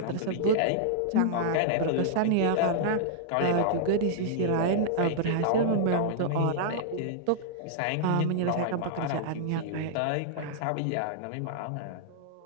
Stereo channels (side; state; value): both; different; correlation -0.02